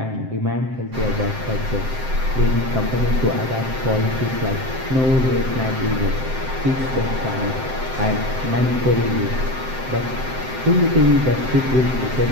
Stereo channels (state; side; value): late; left; 7.7 ms